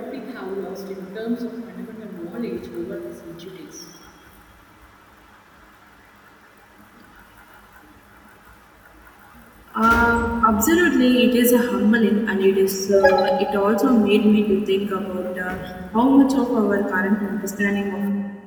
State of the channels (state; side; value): identical; both; correlation 1.00